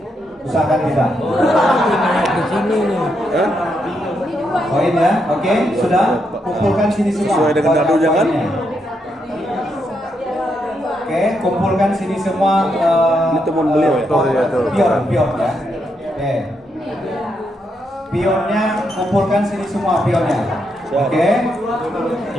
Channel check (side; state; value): both; normal; correlation 0.80